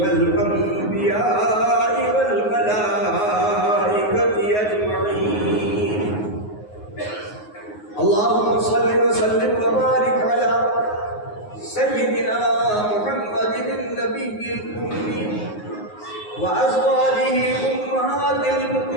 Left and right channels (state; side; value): late; right; 9.5 ms